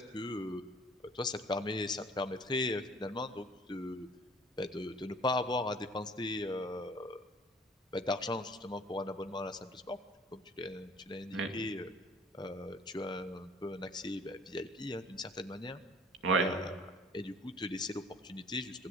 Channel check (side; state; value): both; normal; correlation 0.52